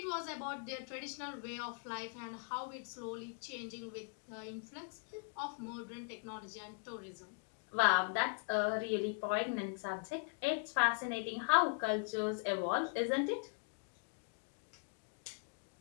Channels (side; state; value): right; quieter; 34.6 dB